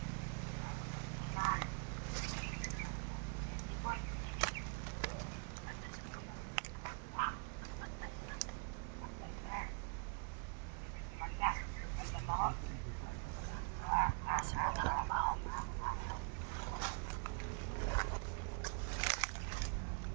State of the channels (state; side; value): quieter; left; 39.0 dB